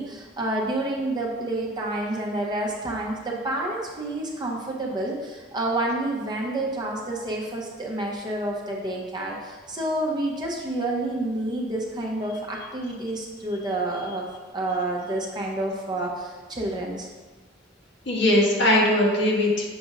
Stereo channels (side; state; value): both; normal; correlation 0.41